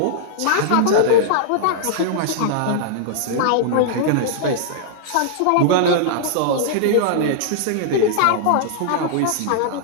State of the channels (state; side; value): different; both; correlation -0.01